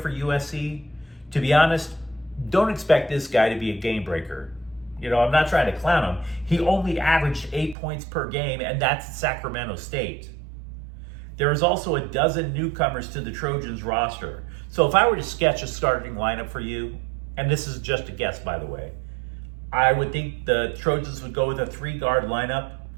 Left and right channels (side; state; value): left; drops out; at 7.8 s